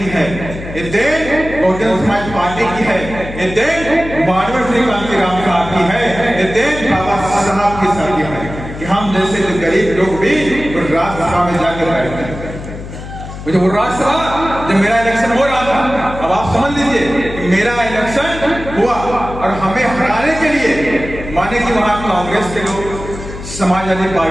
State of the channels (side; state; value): left; noise; hum, 11 dB below the sound